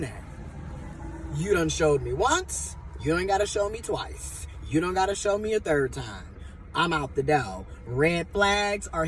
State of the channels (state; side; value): identical; both; correlation 1.00